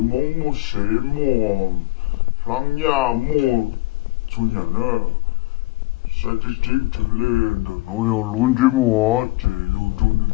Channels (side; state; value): right; quieter; 20.8 dB